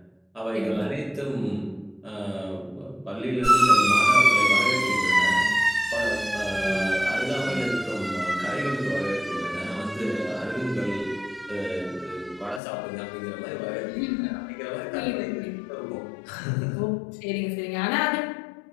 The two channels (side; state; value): right; drops out; at 12.6 s